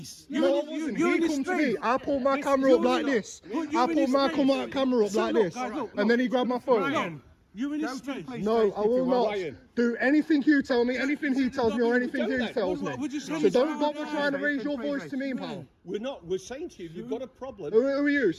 No, I wasn't. You're He in his come to space. me. I pulled my camera up like this. I pulled my camera up So like look, this. guys, look, And then he grabbed my phone. Ryan, you're in his space. No, I will not Ryan. do anything you tell me, anything he tells me, or anything he tells me. Would you say So this don't out bother loud? trying to raise your voice to me, pal. We're not. We're saying to you, you've got a problem. Who are you?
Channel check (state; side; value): identical; both; correlation 1.00